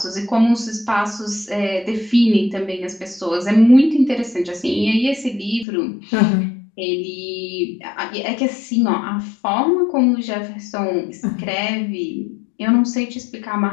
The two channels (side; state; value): right; drops out; at 5.7 s